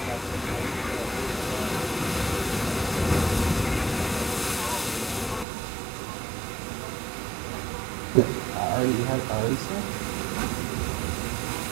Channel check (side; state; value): left; drops out; at 5.5 s